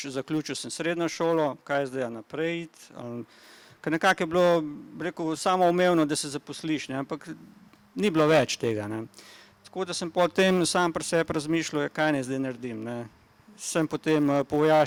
zaključil sem srednjo šolo, kaj zdaj naprej iti, ker nekako je bilo, bi rekel, samoumevno, da se zaposliš, ne, ampak ni bilo več tega, ne. Tako da sem potem sam pri sebi razmišljal, kaj naj zdaj naredim, ne. Sem potem po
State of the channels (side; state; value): both; identical; correlation 1.00